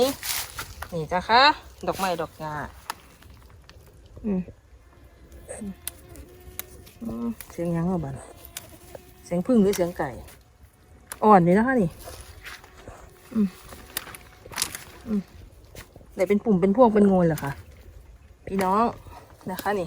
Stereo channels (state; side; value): identical; both; correlation 1.00